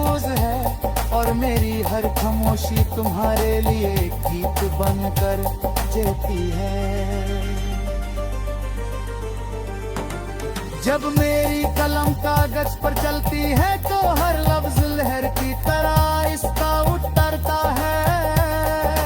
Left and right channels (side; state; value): both; identical; correlation 1.00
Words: है और मेरी हर खामोशी तुम्हारे लिए गीत बनकर जेती है। जब मेरी कलम कागज पर चलती है तो हर लफ्ज लहर की तरह इसका उतरता है।